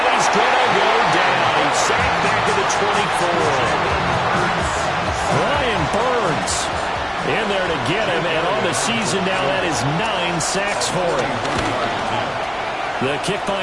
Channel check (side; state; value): both; identical; correlation 1.00